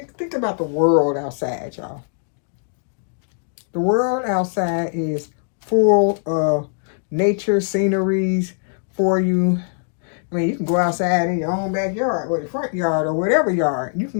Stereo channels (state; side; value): silent; right; digital silence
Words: think about the world outside, y'all. The world outside is full of nature sceneries for you. I mean, you can go outside in your own backyard or the front yard or whatever yard. You can